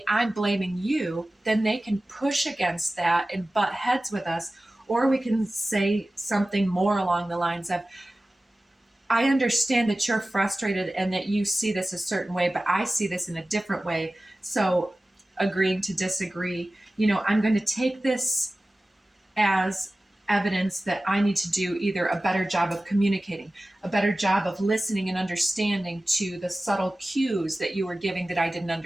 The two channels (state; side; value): normal; both; correlation 0.96